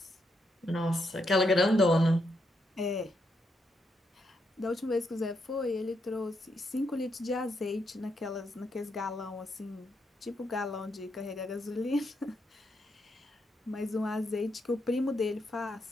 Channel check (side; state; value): both; normal; correlation 0.79